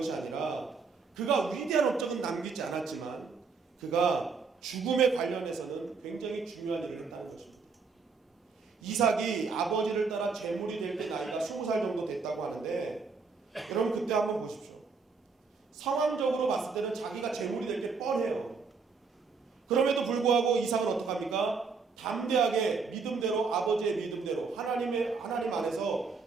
아니라 그가 위대한 업적은 남기지 않았지만 그가 죽음에 관련해서는 굉장히 중요한 일을 했다는 것입니다. 이삭이 아버지를 따라 제물이 될 때 나이가 20살 정도 됐다고 하는데, 여러분 그때 한번 보십시오. 상황적으로 봤을 때는 자기가 제물이 될 게 뻔해요. 그럼에도 불구하고 이삭은 어떡합니까? 담대하게 믿음대로, 아버지의 믿음대로 하나님 안에서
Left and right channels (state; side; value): quieter; left; 4.9 dB